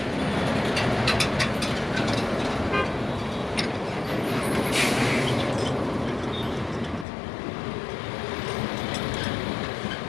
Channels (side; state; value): right; drops out; at 7.1 s